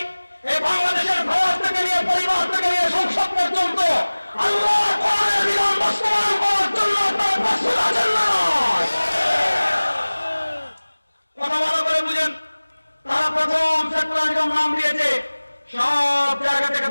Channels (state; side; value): inverted; both; correlation -1.00